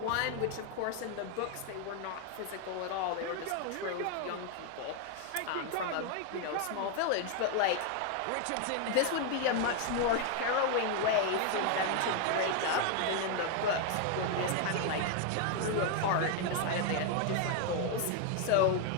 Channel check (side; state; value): both; different; correlation 0.01